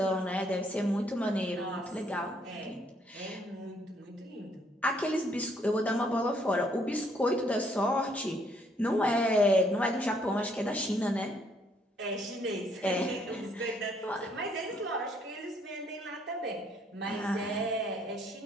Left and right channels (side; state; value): both; normal; correlation 0.68